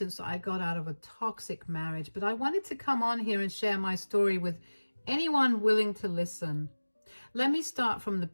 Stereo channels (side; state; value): both; inverted; correlation -1.00